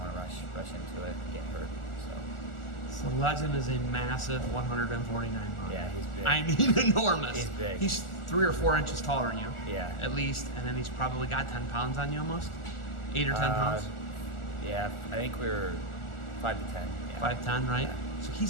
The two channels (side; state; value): right; late; 1.4 ms